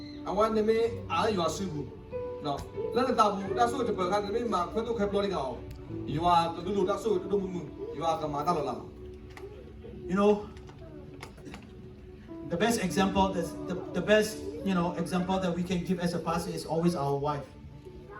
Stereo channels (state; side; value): identical; both; correlation 1.00